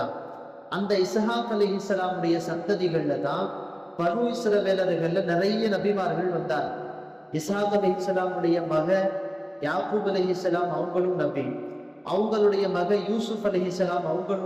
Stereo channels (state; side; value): identical; both; correlation 1.00